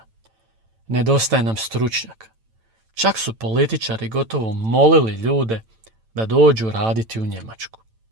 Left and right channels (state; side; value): late; left; 9.0 ms